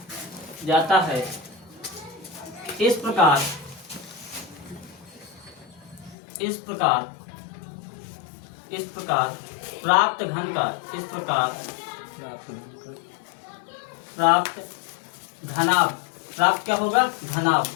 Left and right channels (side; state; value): right; drops out; at 6.2 s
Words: जाता है। इस प्रकार प्राप्त घन का प्राप्त क्या होगा?